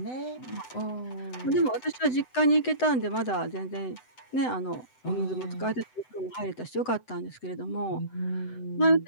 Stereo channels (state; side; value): late; right; 7.9 ms